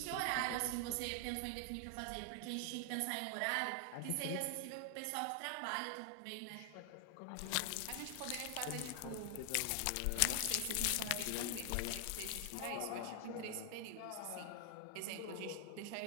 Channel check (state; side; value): different; both; correlation 0.00